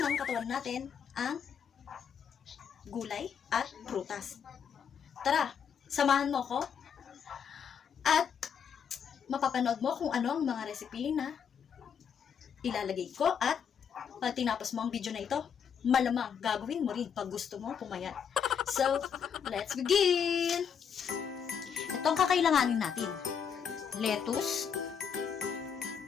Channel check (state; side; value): quieter; right; 7.4 dB